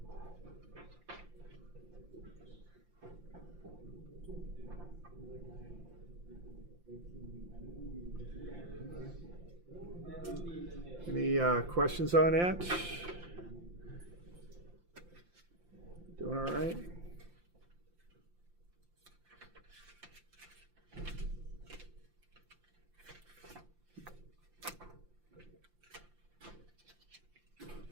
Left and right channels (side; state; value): left; late; 5.8 ms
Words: Any questions on that? Doing all right?